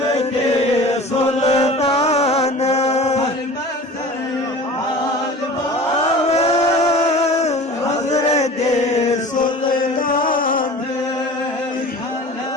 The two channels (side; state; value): both; normal; correlation 0.40